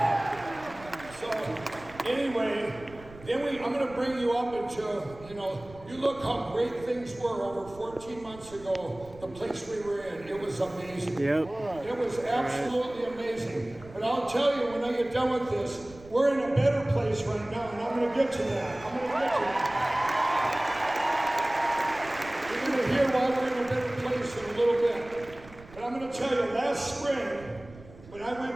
So anyway, I'm going to bring you up into, you look how great things were over 14 months ago, the place we were in. It was amazing. Yep. It was absolutely amazing. But I'll tell you, when I get done with this, we're in a better place right now, and I'm going to get to that. You're going to hear why we're in a better place in a little bit. But I'm going to tell you, last spring, when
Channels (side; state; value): right; noise; rumble, 20 dB below the sound